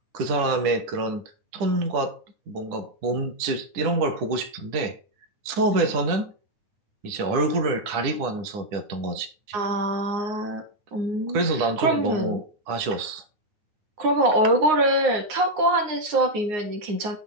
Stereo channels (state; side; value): late; left; 10 ms